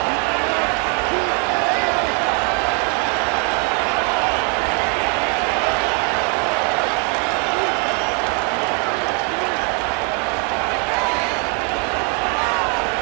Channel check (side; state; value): left; quieter; 36.9 dB